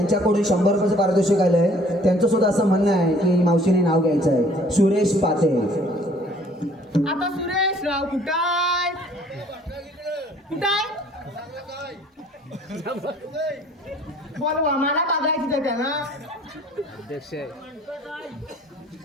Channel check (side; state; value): both; normal; correlation 0.56